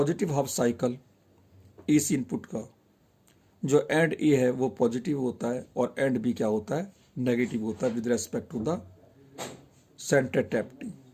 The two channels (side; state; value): both; identical; correlation 1.00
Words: half cycle AC input का जो एंड A है वो पॉजिटिव होता है और एंड B क्या होता है, नेगेटिव होता है with respect to the center tap T।